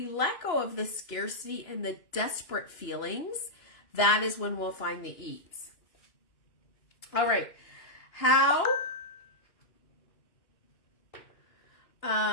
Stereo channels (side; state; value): right; late; 2.9 ms